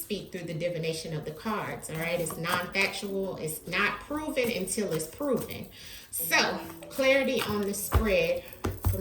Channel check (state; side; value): identical; both; correlation 1.00